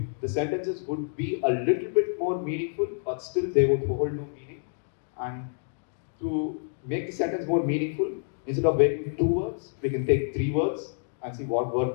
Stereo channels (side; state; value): right; silent; digital silence